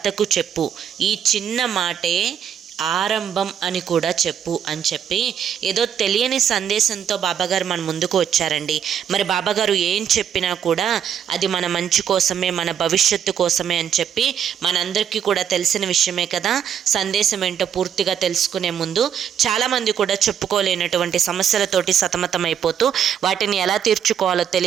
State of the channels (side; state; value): left; quieter; 8.7 dB